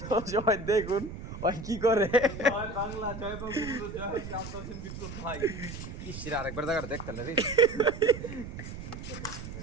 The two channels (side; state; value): right; noise; rumble, 10 dB below the sound